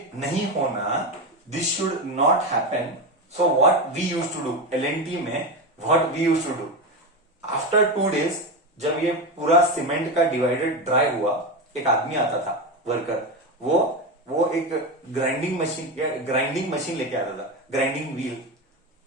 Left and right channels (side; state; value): both; normal; correlation 0.16